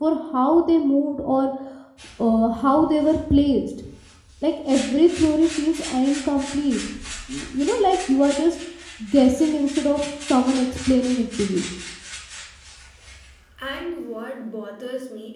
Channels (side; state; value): both; identical; correlation 1.00